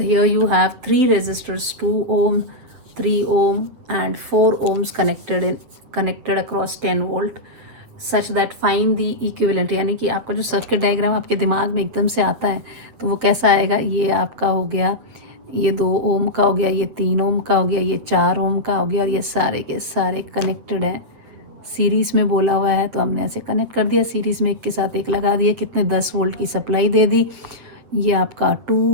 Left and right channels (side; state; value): left; late; 8.5 ms